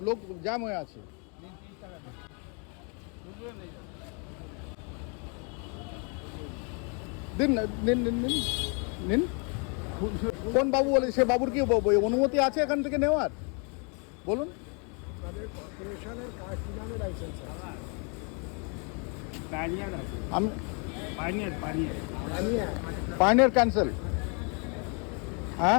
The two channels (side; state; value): right; quieter; 36.2 dB